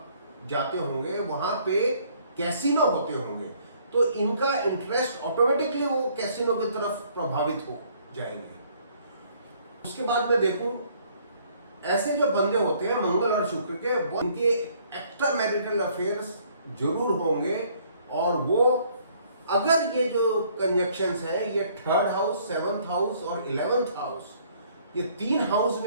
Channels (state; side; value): inverted; both; correlation -0.62